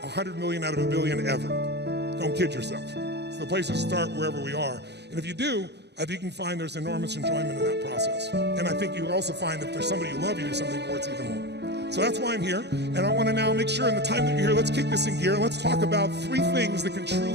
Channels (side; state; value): left; late; 0.49 ms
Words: 100 million out of a billion ever. Don't kid yourself. It's the place to start wherever we are. And if you do, I think you can find there's enormous enjoyment in that process. And I think you'll also find if there's somebody you love, you do something for, it's even more. So that's why I'm here. And I want to now make sure in the time that you're here, let's kick this in gear. And let's talk about 3 things that can